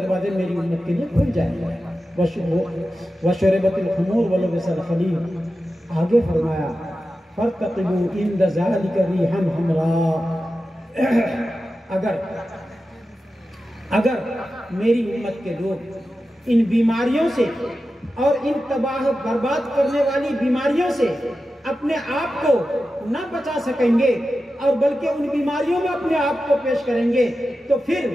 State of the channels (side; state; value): both; normal; correlation 0.92